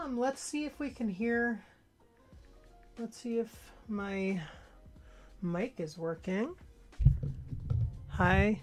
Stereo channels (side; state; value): both; identical; correlation 1.00